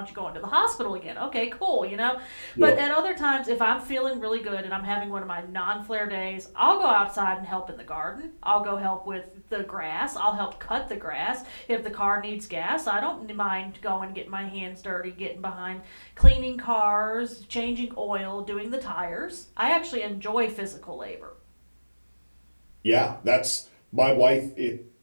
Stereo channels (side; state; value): both; inverted; correlation -1.00